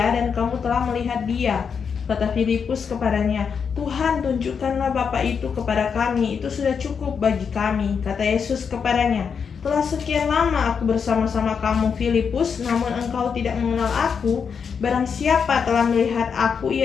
dan kamu telah melihat Dia. Kata Filipus kepadanya, Tuhan, tunjukkanlah Bapa itu kepada kami, itu sudah cukup bagi kami. Kata Yesus kepadanya, telah sekian lama aku bersama-sama kamu, Filipus, namun engkau tidak mengenal aku. Barang siapa telah melihat aku,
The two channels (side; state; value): right; quieter; 6.4 dB